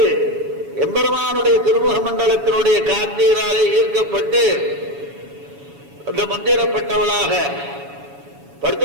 எம்பெருமானுடைய திருமுக மண்டலத்தினுடைய காந்தீராலே ஈர்க்கப்பட்டு அந்த மந்திரப்பட்டவளாக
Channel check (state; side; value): late; left; 7.1 ms